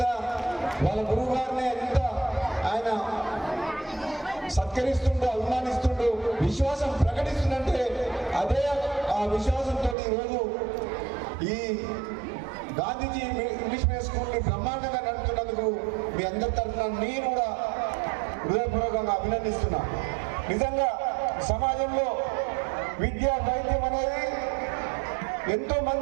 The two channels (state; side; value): drops out; left; at 10.0 s